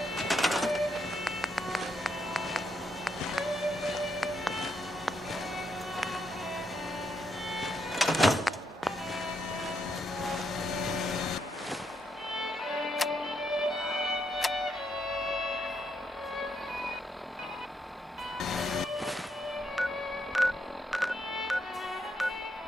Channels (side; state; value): both; normal; correlation 0.78